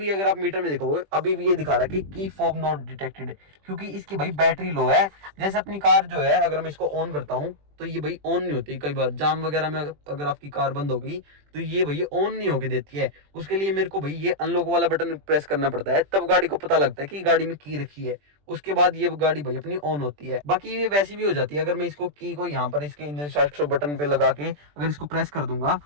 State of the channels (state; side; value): late; left; 20 ms